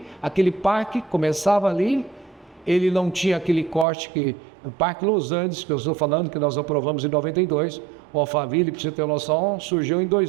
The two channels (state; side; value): drops out; left; at 3.9 s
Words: aquele parque começava ali, ele não tinha aquele corte que... O Parque Los Andes, que eu estou falando, que nós aprovamos em 92, o Alphaville, para você ter noção, surgiu em